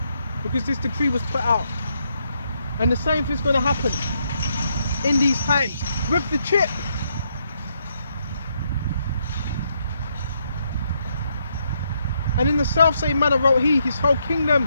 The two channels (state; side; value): inverted; both; correlation -0.77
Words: Because this decree was put out. And the same thing's going to happen in these times with the chip. And in the self-same manner wrote he his whole